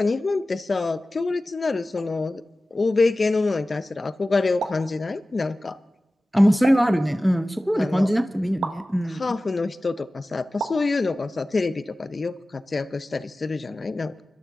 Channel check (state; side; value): normal; both; correlation 0.96